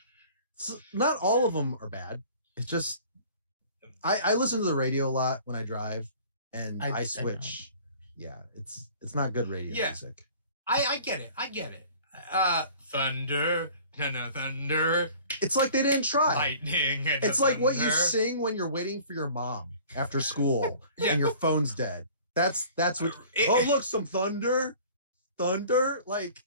Not all of them are bad. It's just I listen to the radio a lot when I drive, and I I know. switch. Yeah, it's not good radio Yeah. music. I get it. Thunder. No, thunder. It's like they didn't try. Lightning. And It's like what you thunder. sing when you're waiting for your mom after school Yeah. and your phone's dead. That's what. It- Oh, look, some thunder, like,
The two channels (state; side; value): inverted; both; correlation -0.48